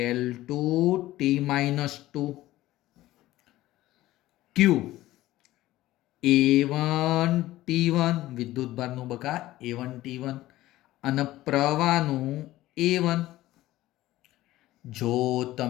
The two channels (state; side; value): quieter; right; 16.1 dB